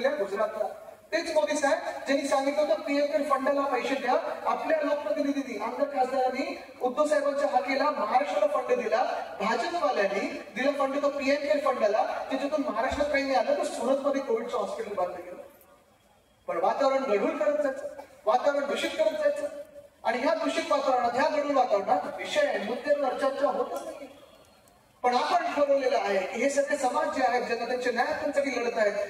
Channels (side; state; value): both; identical; correlation 1.00